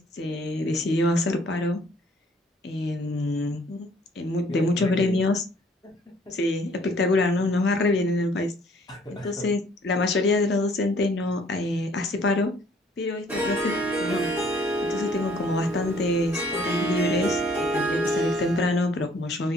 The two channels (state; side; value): normal; both; correlation 0.60